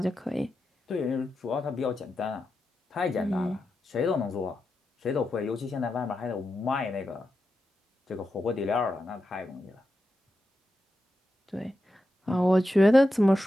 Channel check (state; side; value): normal; both; correlation 0.89